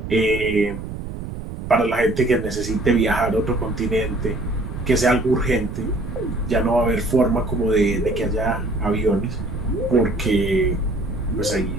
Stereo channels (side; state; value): right; noise; rumble, 8 dB below the sound